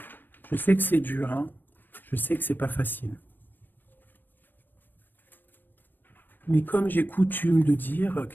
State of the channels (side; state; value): right; late; 0.093 ms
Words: Je sais que c'est dur, hein. Je sais que c'est pas facile. Mais comme j'ai coutume de dire,